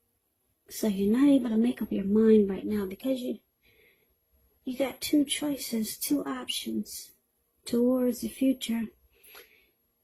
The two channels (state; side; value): identical; both; correlation 1.00